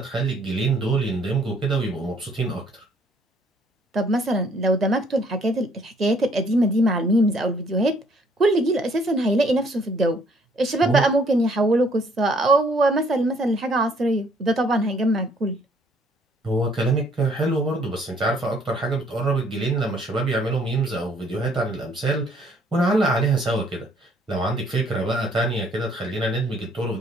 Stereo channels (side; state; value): both; normal; correlation 0.63